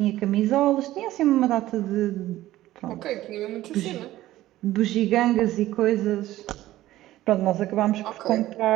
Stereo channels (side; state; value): left; quieter; 15.3 dB